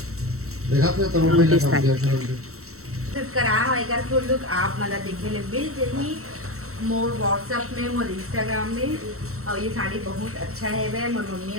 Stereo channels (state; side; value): late; left; 0.64 ms